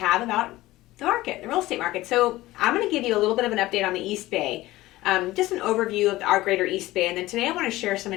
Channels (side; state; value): right; quieter; 17.5 dB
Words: about the market, the real estate market. So I'm going to give you a little bit of an update on the East Bay, just an overview of our greater East Bay. And then today I want to share some